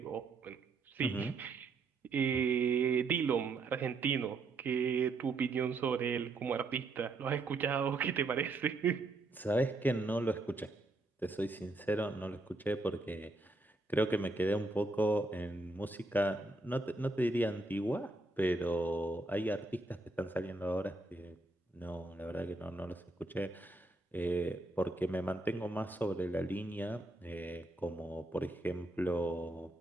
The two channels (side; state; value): left; quieter; 3.1 dB